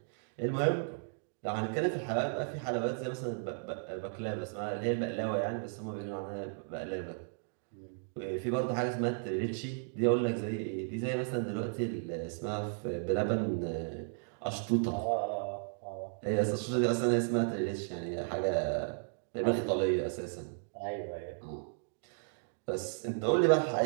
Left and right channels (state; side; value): silent; left; digital silence